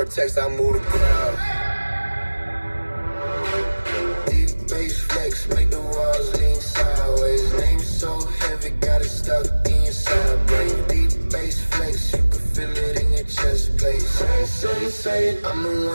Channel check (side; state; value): both; inverted; correlation -1.00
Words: text, I move the crowd. Deep bass flex, make the walls lean sideways. Name so heavy, got it stuck in your side brain. Deep bass flex, you can feel it in your chest plate. Say it, I'm the